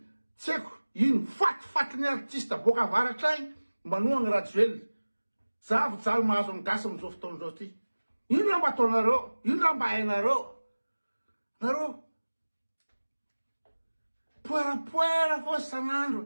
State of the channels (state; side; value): inverted; both; correlation -1.00